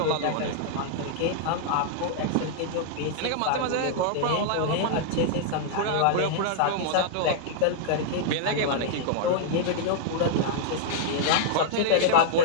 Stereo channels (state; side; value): different; both; correlation -0.01